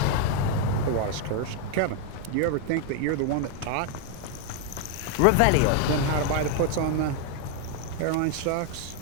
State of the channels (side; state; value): both; different; correlation 0.01